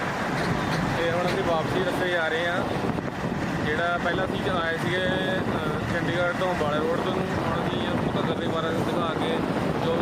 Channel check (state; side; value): identical; both; correlation 1.00